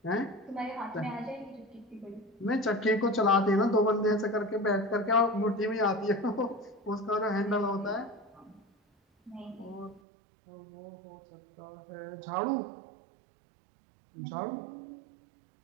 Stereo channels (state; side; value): drops out; left; at 10.0 s